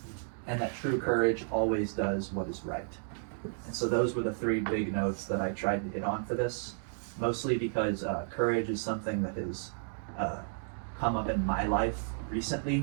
and that true courage always does what is right. And so those were the three big notes that I tried to hit on for this, mostly because courage is something that has come up in my life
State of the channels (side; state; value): left; silent; digital silence